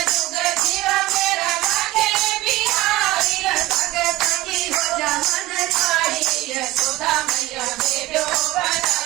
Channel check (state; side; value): quieter; left; 18.3 dB